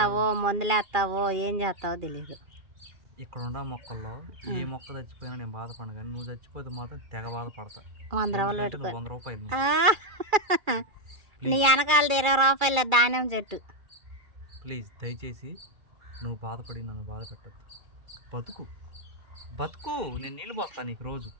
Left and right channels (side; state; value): left; late; 2.3 ms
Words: మందులేస్తావో ఏం చేస్తావో తెలీదు. ఇక్కడ ఉన్న మొక్కల్లో ఏ మొక్క చచ్చిపోయినా నేను బాధపడను, కానీ నువ్వు చచ్చిపోతే మాత్రం తెగ బాధపడతా. 100 రూపాయలు పెట్టుకో. 100 రూపాయలు నీ వెనకాలది 20 రూపాయలు ధాన్యం చెట్టు. ప్లీజ్ దయచేసి నువ్వు బాధపడి నన్ను బాధ పెట్టద్దు. బతుకు బతుకు, నేను నీళ్ళు పోస్తాను నీకు రోజు.